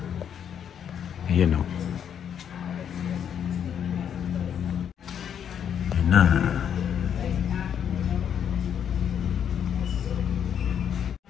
Ayan o. Ayan na.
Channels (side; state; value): right; quieter; 8.6 dB